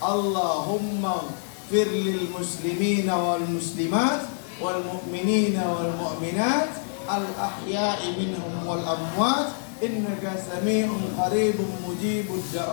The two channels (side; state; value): right; silent; digital silence